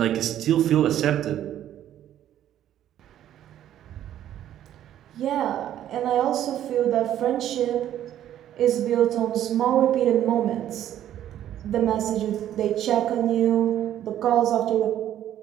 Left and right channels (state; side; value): quieter; left; 11.5 dB